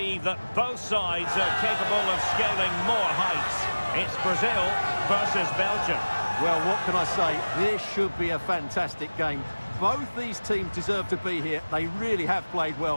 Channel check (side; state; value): both; inverted; correlation -1.00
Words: that both sides are capable of scaling more heights. It's Brazil versus Belgium. Well, what can I say? This should be a fantastic game. Both these teams deserve to be here. They really have played